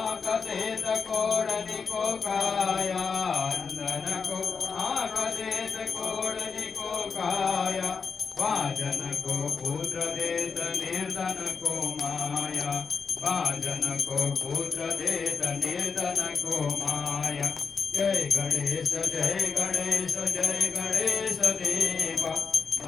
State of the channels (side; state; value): right; quieter; 5.5 dB